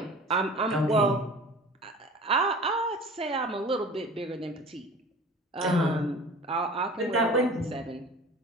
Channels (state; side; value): normal; both; correlation 0.41